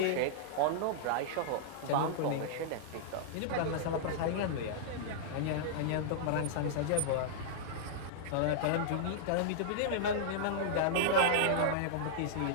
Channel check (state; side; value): different; both; correlation -0.02